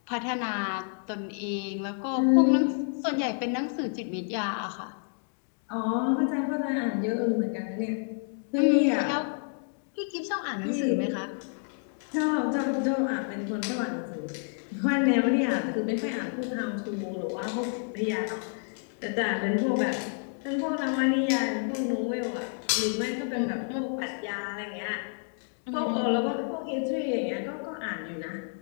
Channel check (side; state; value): right; silent; 58 dB below the other